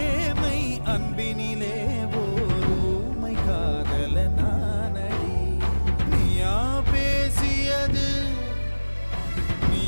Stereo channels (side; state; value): both; inverted; correlation -1.00